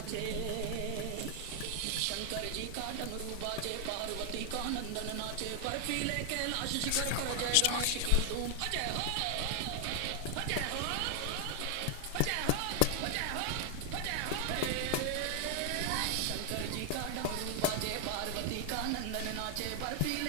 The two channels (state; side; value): different; both; correlation 0.00